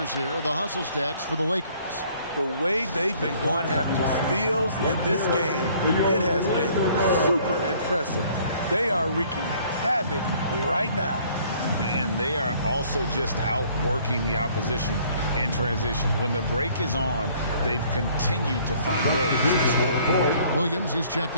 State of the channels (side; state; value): both; inverted; correlation -0.58